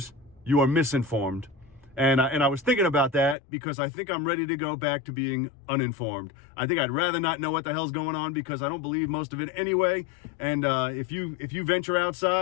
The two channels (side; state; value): right; drops out; at 3.4 s